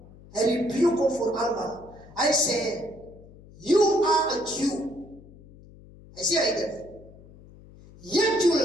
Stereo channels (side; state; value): left; noise; hum, 22 dB below the sound